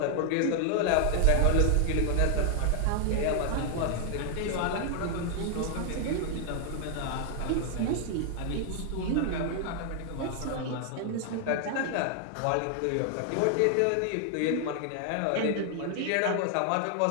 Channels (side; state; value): both; different; correlation 0.00